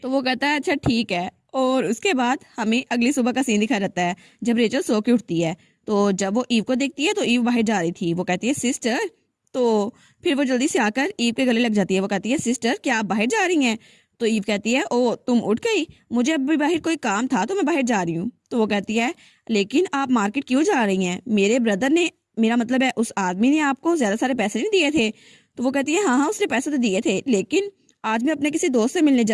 वो कहता है अच्छा ठीक है। और उसके बाद हमें अगली सुबह का सीन दिखा रहता है जब रेचल सो के उठती है। तो जब वो ईव को देखती है तो ईव बाहर जा रही थी। वो कहती है सिस्टर। तो फिर वो जल्दी से आकर ईव के गले लग जाती है। वो कहती है सिस्टर क्या आप बाहर जा रही हैं। तो ईव कहती है ओ तुम उठ गई, मुझे अभी बाहर कोई काम था तो मैं बाहर जा रही हूँ। तो वो कहती है लेकिन आप मार्केट क्यों जा रही हैं, मेरे ब्रदर ने, मेरा मतलब है उस आदमी ने आपको ज्यादा सारे पैसे नहीं दिए थे। तो वो कहती है हाँ हाँ उसने पैसे तो दिए थे, लेकिन आज मैं अपने किसी दोस्त से मिलने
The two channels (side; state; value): both; identical; correlation 1.00